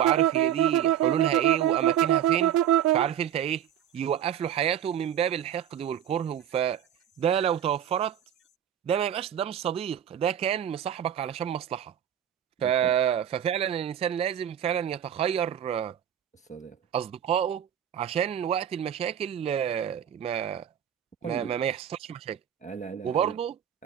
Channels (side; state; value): left; quieter; 10.1 dB